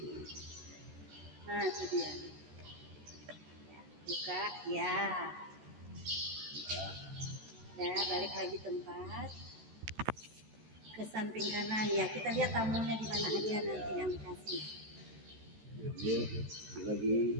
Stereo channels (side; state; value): left; late; 14 ms